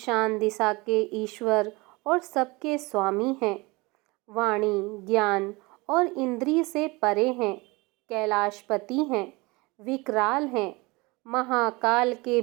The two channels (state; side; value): quieter; left; 24.5 dB